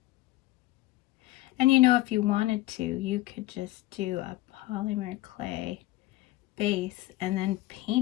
And you know, if you wanted to, you could just do a polymer clay base and then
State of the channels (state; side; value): quieter; right; 16.9 dB